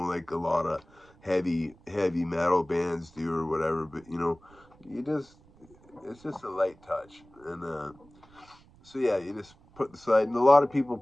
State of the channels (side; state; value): right; noise; rumble, 27 dB below the sound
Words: like a lot of heavy metal bands do or whatever. But it's just a light touch. And so yeah, you just put the slide. And a lot of people